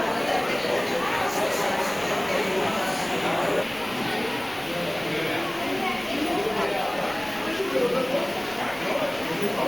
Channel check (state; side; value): noise; left; rumble, 28 dB below the sound